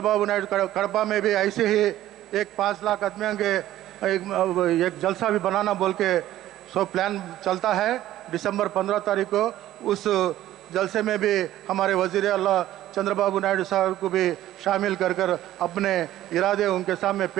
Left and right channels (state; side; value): quieter; left; 13.9 dB